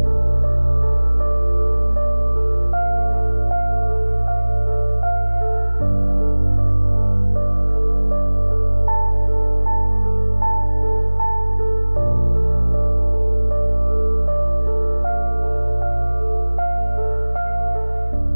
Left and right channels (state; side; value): inverted; both; correlation -1.00